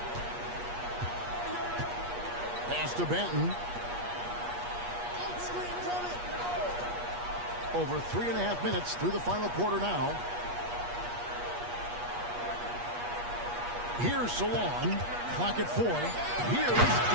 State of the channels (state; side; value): late; left; 8.4 ms